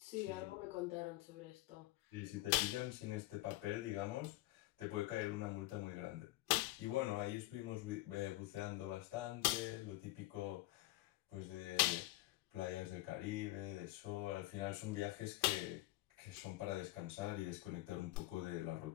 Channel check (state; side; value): quieter; right; 18.3 dB